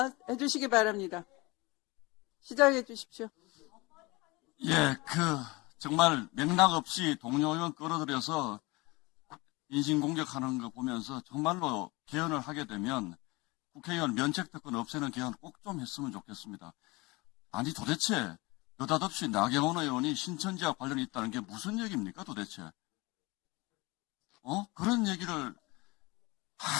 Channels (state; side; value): quieter; right; 23.9 dB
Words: 해주시기 바랍니다. 시작해 주십시오. 예, 정말 맥락 없이 동료 의원 끌어들여서 인신공격하는 거 보면서 정말로 개헌을 하게 되면 국회의원 면책특권 없애는 개헌 꼭 좀 했으면 좋겠습니다. 아니 도대체 느닷없이 나경원 의원이 신천지와 관련이 있다는 게 무슨 얘기입니까 도대체? 그런 얘기를